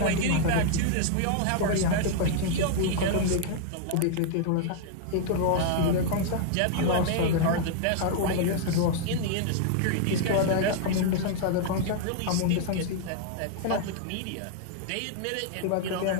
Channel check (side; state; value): both; different; correlation 0.00